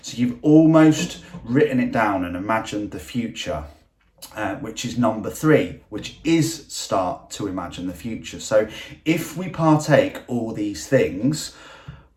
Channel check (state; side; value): identical; both; correlation 1.00